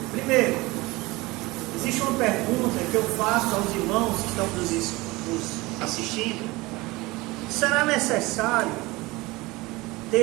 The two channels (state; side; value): quieter; left; 21.8 dB